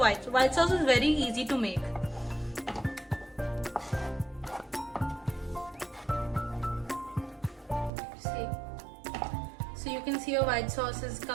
sauce is very easy to make. See. So you can see your white sauce is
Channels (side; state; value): left; drops out; at 7.9 s